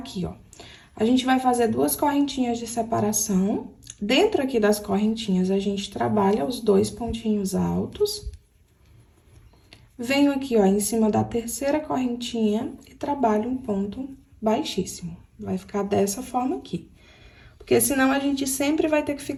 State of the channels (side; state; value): both; identical; correlation 1.00